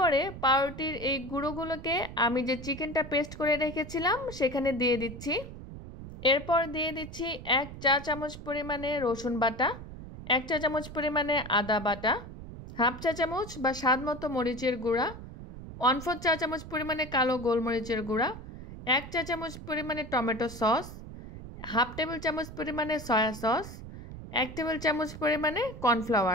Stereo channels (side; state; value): right; noise; rumble, 12 dB below the sound